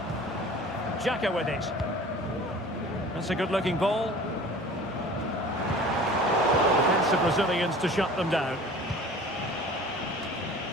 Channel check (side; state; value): both; normal; correlation 0.43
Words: Xhaka with it. That's a good-looking ball. Defensive Brazilians to shut them down.